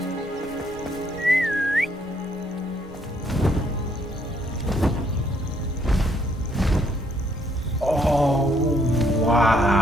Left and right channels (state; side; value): normal; both; correlation 0.69